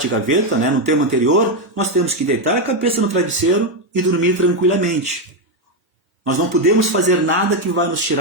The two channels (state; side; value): normal; both; correlation 0.06